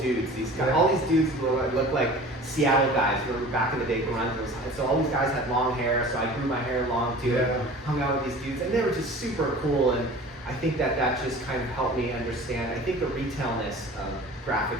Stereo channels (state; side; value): normal; both; correlation 0.42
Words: These guys, Yeah. all these dudes look like Seattle guys. Remember back in the day, grunge was. So all these guys had long hair, so I grew my hair long too. Yeah. Hung out with these dudes, and they were just super cool. And I think that just kind of helped me understand. I think the retailness of graphic